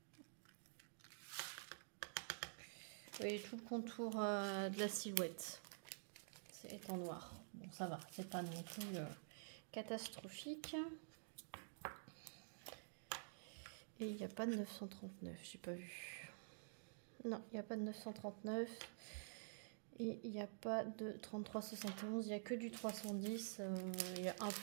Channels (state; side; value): silent; left; digital silence